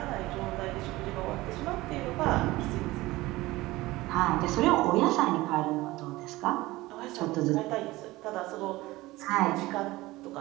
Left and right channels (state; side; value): quieter; left; 19.1 dB